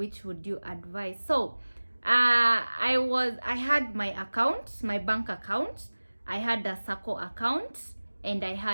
would you advise? So I had my account, my bank account, I had a SACCO account, and I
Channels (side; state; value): both; inverted; correlation -1.00